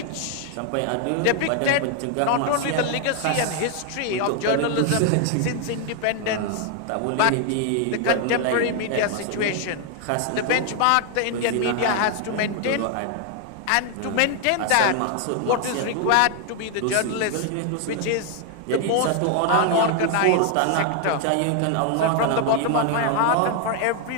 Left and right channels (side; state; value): both; different; correlation 0.00